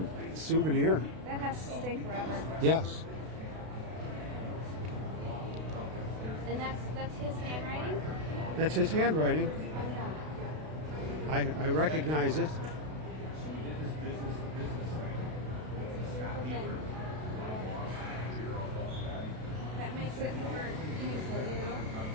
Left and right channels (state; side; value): late; left; 32 ms